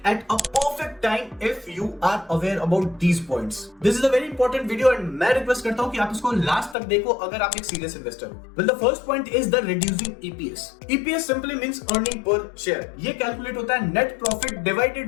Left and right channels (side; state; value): right; drops out; at 6.8 s